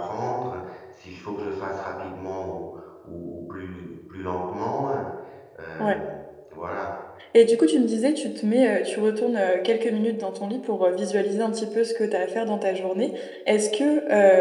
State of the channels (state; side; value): identical; both; correlation 1.00